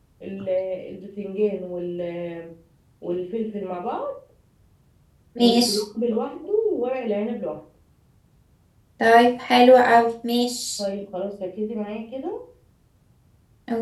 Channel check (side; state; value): both; identical; correlation 1.00